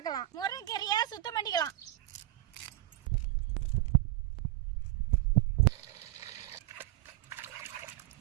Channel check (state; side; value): quieter; left; 16.4 dB